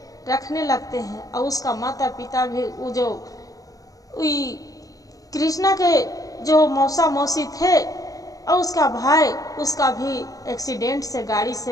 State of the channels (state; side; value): late; right; 0.17 ms